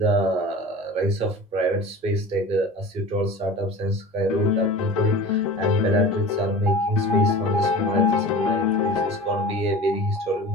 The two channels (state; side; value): normal; both; correlation 0.36